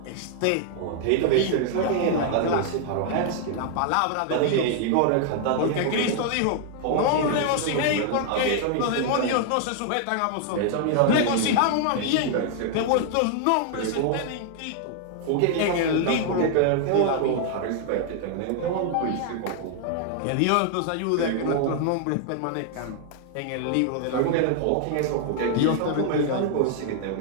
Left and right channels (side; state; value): both; different; correlation 0.00